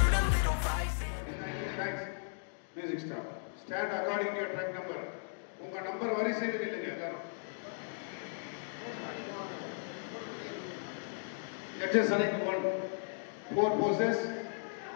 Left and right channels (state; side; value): silent; right; digital silence